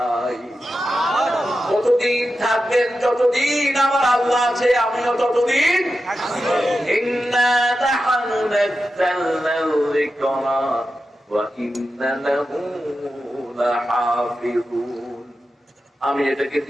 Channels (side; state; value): both; normal; correlation 0.90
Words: কতদিন থাকবেন? যতদিন আমার আল্লাহ আছে আমিও ততদিন। ইন্না নাহনু নাযালনাল যিকরা ওয়া ইন্না লাহু লাহাফিজুন। আমি এটাকে